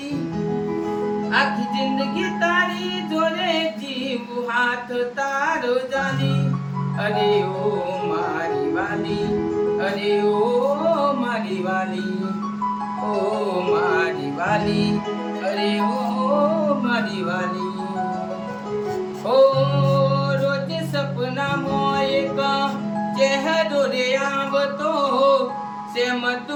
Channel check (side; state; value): both; identical; correlation 1.00